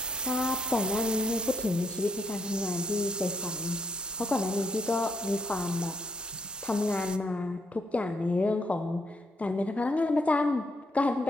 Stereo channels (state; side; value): normal; both; correlation 0.75